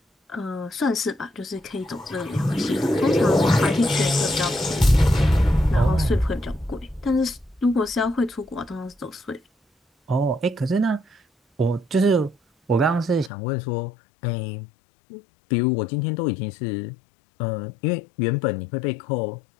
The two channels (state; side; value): drops out; right; at 13.3 s